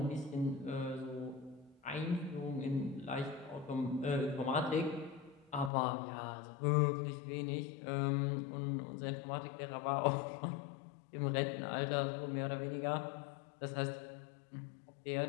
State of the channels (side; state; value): right; drops out; at 5.7 s